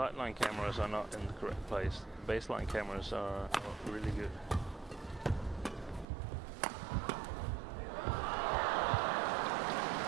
cameras are not in the correct place. The baseline cameras are really good.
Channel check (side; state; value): left; drops out; at 6.1 s